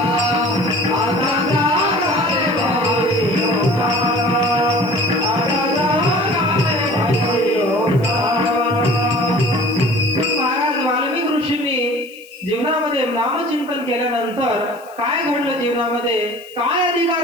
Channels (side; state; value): left; noise; hiss, 25 dB below the sound